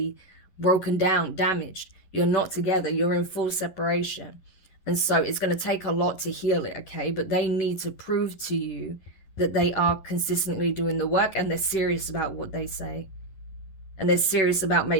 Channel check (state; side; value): late; right; 11 ms